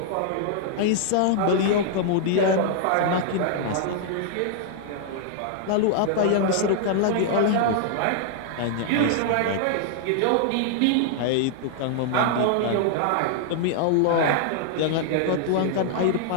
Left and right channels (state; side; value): different; both; correlation -0.01